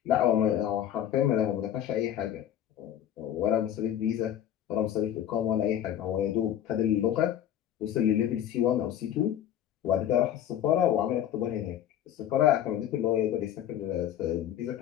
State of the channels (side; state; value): right; quieter; 10.7 dB